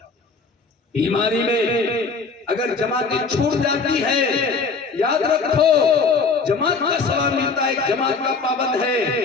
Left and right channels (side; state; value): right; quieter; 4.5 dB